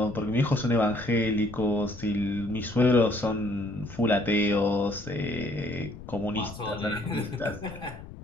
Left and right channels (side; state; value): left; noise; rumble, 15 dB below the sound